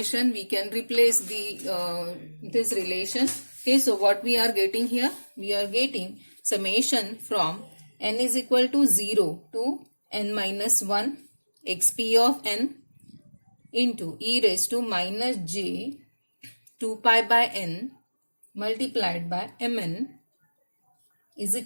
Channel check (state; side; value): inverted; both; correlation -1.00